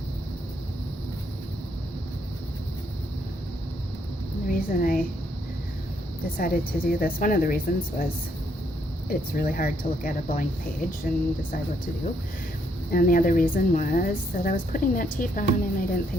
The reason I decided to do this, one of the reasons was it's really hard to look at a blank page and decide what to do. And the other reason was that I was putting that tape on and I didn't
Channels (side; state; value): both; normal; correlation 0.72